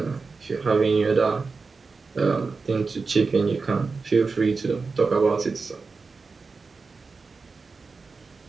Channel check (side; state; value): left; quieter; 4.4 dB